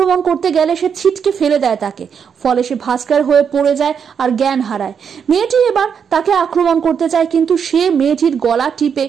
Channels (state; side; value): quieter; left; 7.1 dB